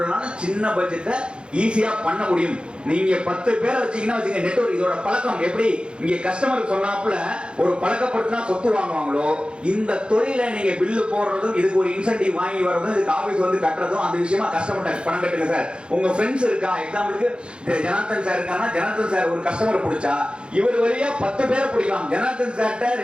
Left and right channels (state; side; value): late; left; 0.055 ms